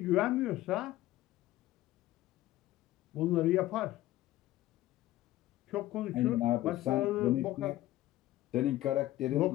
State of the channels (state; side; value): quieter; right; 15.6 dB